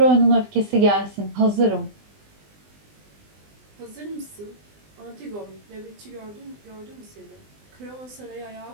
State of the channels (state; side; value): late; left; 20 ms